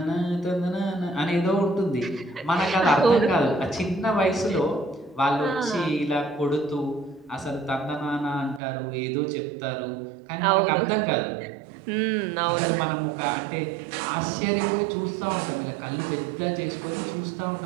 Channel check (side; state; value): left; drops out; at 8.6 s